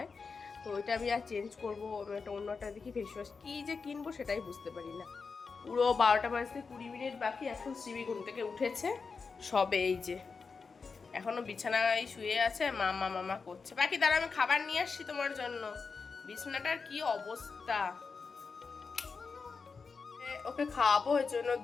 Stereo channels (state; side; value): quieter; right; 4.9 dB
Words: তো ওইটা আমি আর চেঞ্জ করবো, একটা অন্য একটা দেখি ফেস ওয়াশ কী যে কিনবো সেটাই বুঝতে পারি না। পুরো 12টা বাজতে 20 মিনিট বাকি, এখন শ্রী ঘুম থেকে উঠেছে সবে। এই যে এখনো বিছানায় শুয়ে আছে, মামা মামা করছে। বাকি দাঁড়া, আমি খাবার নিয়ে আসছি তোমার জন্য। বিছানাটার কি অবস্থা। ওকে খাওয়াবো, এর জন্য